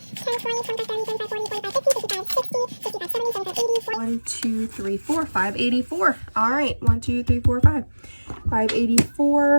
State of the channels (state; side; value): inverted; both; correlation -1.00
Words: 10, 20, 25, 30, 35, 40, 45, 50, 55, 60, 55, 70, 75, 80, 1, 2, 3, 4, 584. All right, 1, 2, 3, 4, 5.